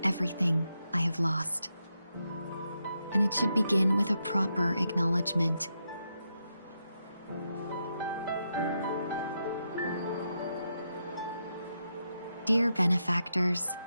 everything I have lost. And it should begin with a proper acknowledgement. Dear benefactors,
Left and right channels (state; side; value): inverted; both; correlation -0.84